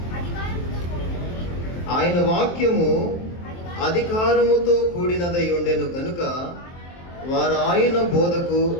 ఆయన వాక్యము అధికారముతో కూడినదై ఉండెను గనుక వారు ఆయన బోధకు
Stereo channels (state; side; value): late; right; 23 ms